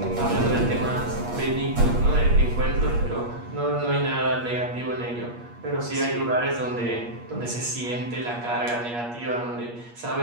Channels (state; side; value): late; left; 8.4 ms